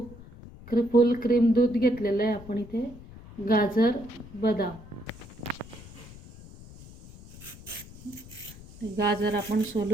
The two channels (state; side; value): noise; left; rumble, 18 dB below the sound